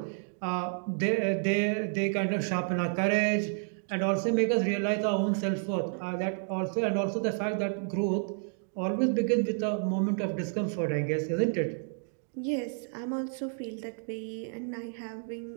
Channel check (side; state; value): left; silent; 58 dB below the other